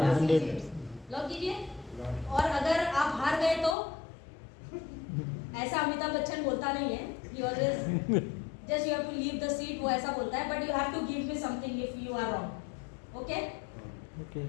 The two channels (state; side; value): drops out; right; at 3.8 s